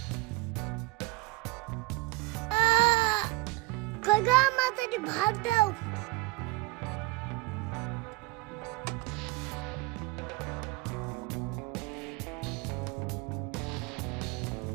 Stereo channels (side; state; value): left; quieter; 22.7 dB